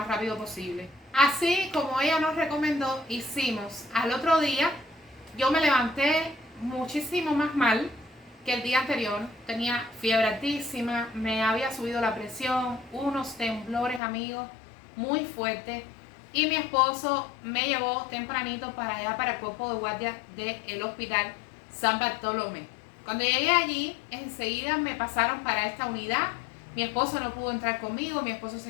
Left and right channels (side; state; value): right; drops out; at 14.0 s